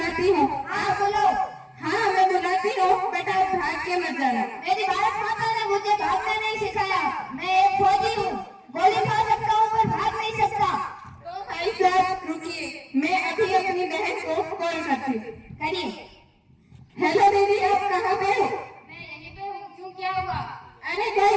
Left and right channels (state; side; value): identical; both; correlation 1.00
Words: हूँ। हाँ बोलो। हाँ मैं बुलाती हूँ, बेटा भाग के मत जाना। मेरी भारत माता ने मुझे भागना नहीं सिखाया। मैं एक फौजी हूँ, गोली खा सकता हूँ पर भाग नहीं सकता। तो भाई साहब रुकिए, मैं अभी अपनी बहन को कॉल करती हूँ। करिए। हेलो दीदी, आप कहाँ पे हो? मैं यहीं पे हूँ। क्यों, क्या हुआ? अरे कोई